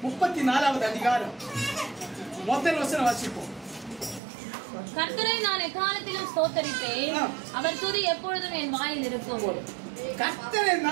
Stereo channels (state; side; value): drops out; left; at 4.2 s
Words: 34வது அதிகாரம் முதல் வசனம் வாசிப்போம். கர்த்தரை நான் எக்காலத்திலும் ஸ்தோத்தரிப்பேன், அவர் துதி எப்பொழுதும் என் வாயில் இருக்கும். கர்த்தரை